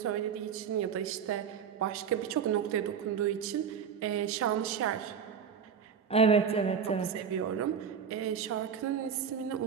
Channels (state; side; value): quieter; left; 7.1 dB